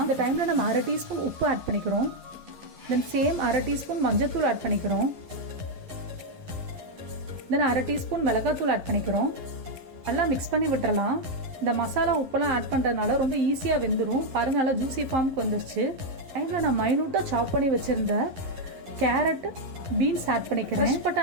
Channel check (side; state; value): left; late; 11 ms